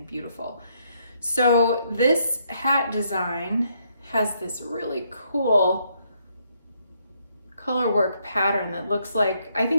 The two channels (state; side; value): inverted; both; correlation -0.73